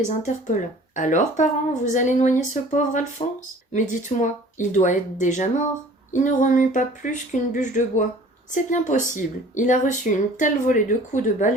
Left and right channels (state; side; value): normal; both; correlation 0.48